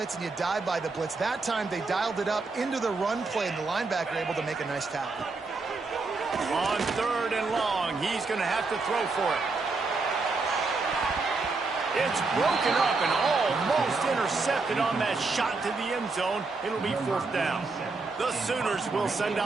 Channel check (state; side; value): quieter; left; 3.9 dB